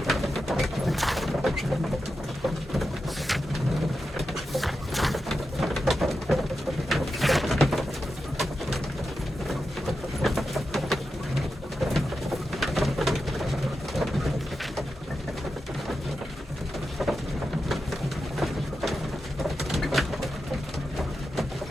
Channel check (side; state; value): both; normal; correlation 0.89